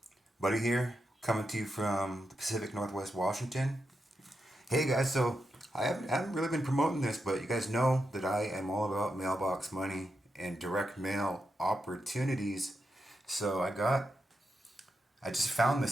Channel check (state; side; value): normal; both; correlation 0.86